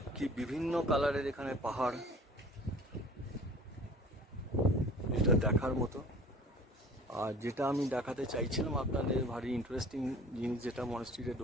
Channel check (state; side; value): normal; both; correlation 0.46